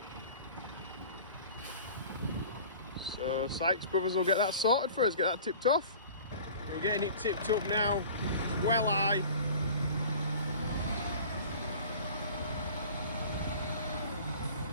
So Sykes Brothers will get that sorted for us, get that tipped off. We're getting it tipped up now, well high.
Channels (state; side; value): inverted; both; correlation -0.43